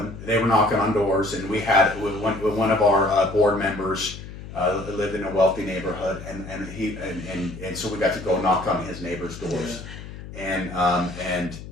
knocking on doors, and we had one of our board members lived in a wealthy neighborhood, and so we got to go knock on his neighbors' doors, and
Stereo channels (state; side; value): noise; left; hum, 13 dB below the sound